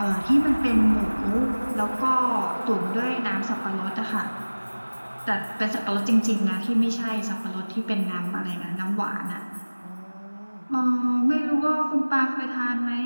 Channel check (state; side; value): inverted; both; correlation -1.00